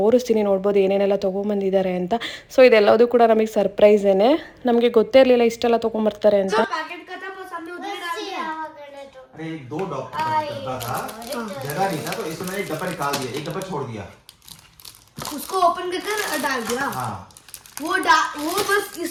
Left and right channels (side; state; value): both; identical; correlation 1.00